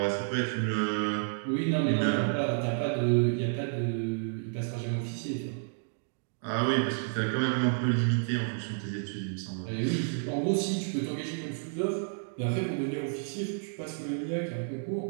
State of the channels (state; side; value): silent; left; digital silence